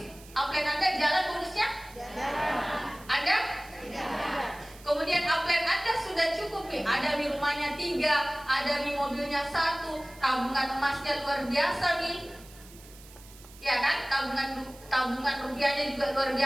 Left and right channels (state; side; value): noise; right; hiss, 21 dB below the sound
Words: upline Anda jalan bonusnya? Anda? Kemudian upline Anda sudah cukup nih, ada nih rumahnya 3, ada nih mobilnya 1, tabungan emasnya luar biasa nih. Ya kan? Tabungan rupiahnya juga luar